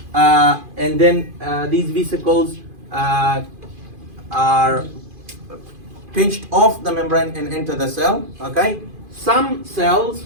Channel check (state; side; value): late; left; 2.5 ms